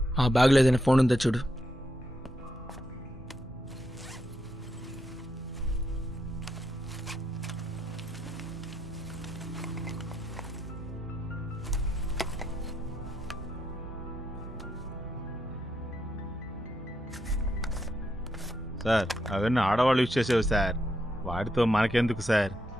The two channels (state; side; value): normal; both; correlation 0.80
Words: ఆ బ్యాగ్లో ఏదైనా ఫోన్ ఉందో చూడు. సార్ అవన్నీ ఆడవాళ్ళు యూజ్ చేసేవి సార్, వాటితో మనకెందుకు సార్?